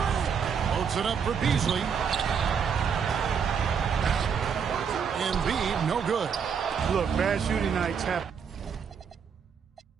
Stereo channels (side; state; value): left; quieter; 6.8 dB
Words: Loads it up for Beasley. Embiid, no good. Look, bad shooting nights happen